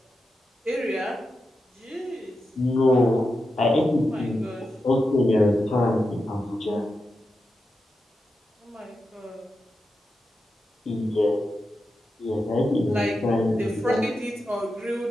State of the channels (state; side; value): normal; both; correlation 0.89